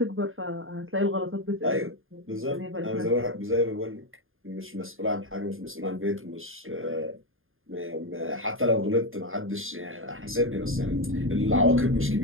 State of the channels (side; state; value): left; late; 0.59 ms